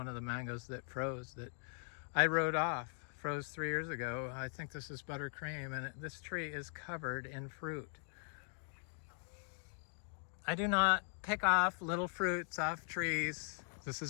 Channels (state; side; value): silent; right; 51 dB below the other